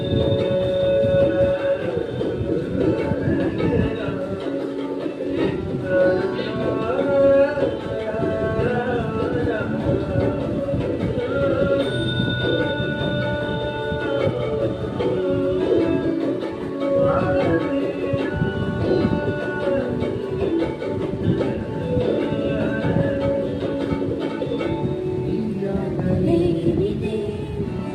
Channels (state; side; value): identical; both; correlation 1.00